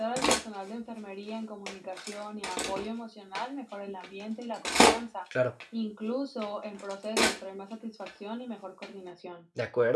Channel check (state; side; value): identical; both; correlation 1.00